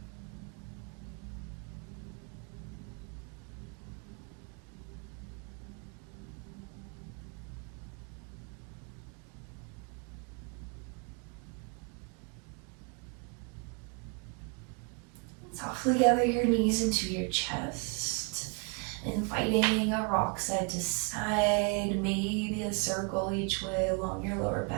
Softly gather your knees into your chest, inviting a rock side to side, maybe a circle each way along your lower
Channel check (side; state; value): left; quieter; 36.1 dB